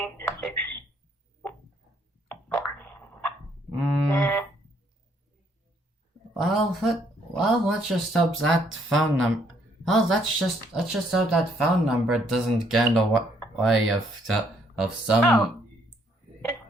6, 4. Well, let's just hope that phone number. Well, let's just hope that phone number doesn't get in the way of some. Oh.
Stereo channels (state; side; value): normal; both; correlation 0.68